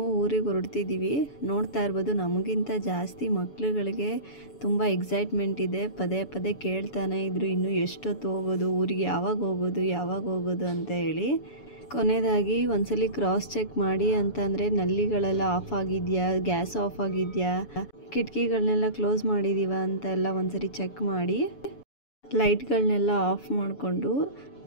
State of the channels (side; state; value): right; late; 7.0 ms